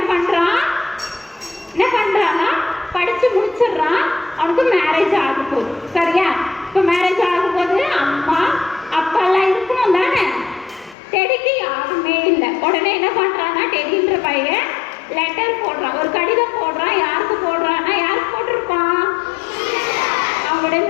பண்றான்னா படிச்சு முடிச்சிடுறான். அவனுக்கு மேரேஜ் ஆக போகுது. சரியா? இப்போ மேரேஜ் ஆகும் போது அம்மா அப்பா எல்லாம் இருக்கணும் தானே. டெடிக்கு யாருமே இல்லை. உடனே என்ன பண்றான்னா, டெடின்ற பையன் லெட்டர் போடுறான், ஒரு கடிதம் போடுறான். யாருக்கு போடுறான்னா, யாருக்கு போட்டிருப்பான், அவங்களுடைய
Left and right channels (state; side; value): drops out; right; at 11.0 s